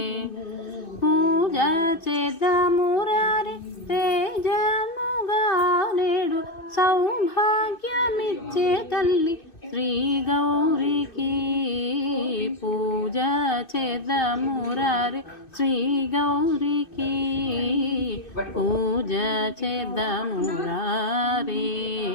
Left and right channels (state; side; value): late; right; 2.6 ms